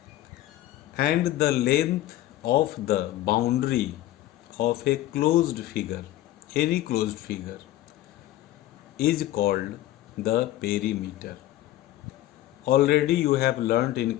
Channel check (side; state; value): right; quieter; 14.9 dB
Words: And the length of the boundary of a closed figure, any closed figure, is called the perimeter. Already you have learnt in